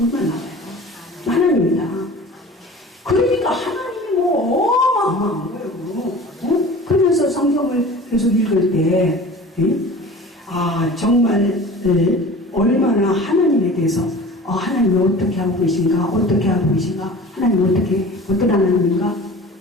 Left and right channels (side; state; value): both; normal; correlation 0.40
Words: 나와요. 하나님이다. 그러니까 하나님이 뭐 어마어마한 거예요. 응? 그러면서 성경을 계속 읽을 때 정말 얼마나 하나님에 대해서 하나님이 어떻게 하고 계신가 하나님 어떤 하나님인가